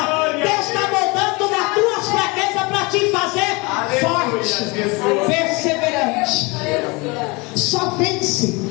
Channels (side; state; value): right; quieter; 26.6 dB